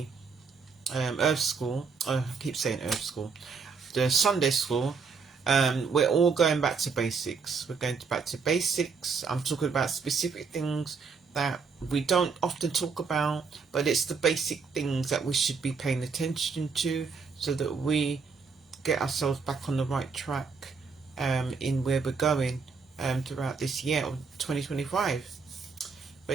Earth School, I keep saying Earth School, the Sunday School, we're all going back to basics. We're going back to basics. I'm talking about specific things that we don't often talk about, but it's the basic things that we should be paying attention to, so that we get ourselves back on the right track in where we're going throughout this year of 2025.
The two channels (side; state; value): left; quieter; 5.2 dB